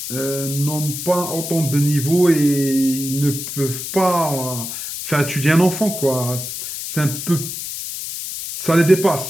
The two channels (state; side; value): noise; left; hiss, 7 dB below the sound